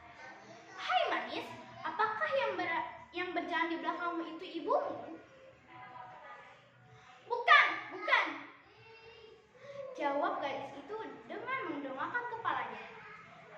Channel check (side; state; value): both; identical; correlation 1.00